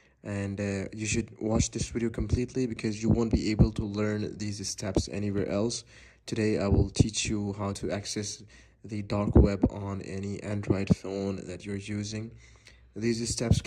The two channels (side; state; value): both; identical; correlation 1.00